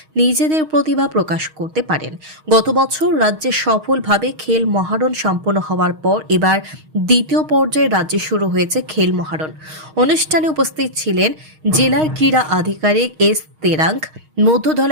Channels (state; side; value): late; left; 6.4 ms